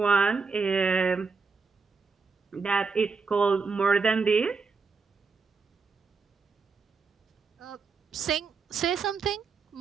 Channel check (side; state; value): left; quieter; 4.8 dB